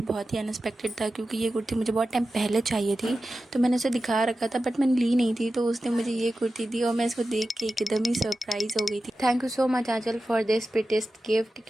बहुत ही अनएक्सपेक्टेड था, क्योंकि ये कुर्ती मुझे बहुत टाइम पहले चाहिए थी। तो मैंने उसे दिखा रखा था बट मैंने ली नहीं थी। तो उसने मुझे ये कुर्ती दी और मैं इसको देख के एकदम ही सरप्राइज़ हो गई थी। Thank you so much Aanchal for this prettiest gift,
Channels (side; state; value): both; normal; correlation 0.93